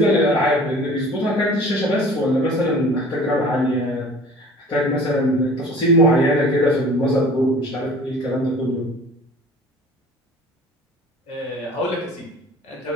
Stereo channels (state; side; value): normal; both; correlation 0.46